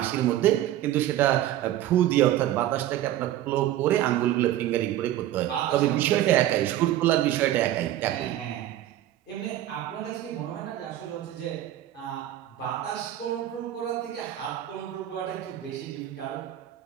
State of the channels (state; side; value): quieter; left; 13.1 dB